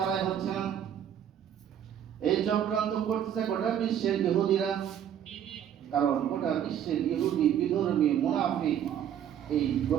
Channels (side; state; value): left; quieter; 9.6 dB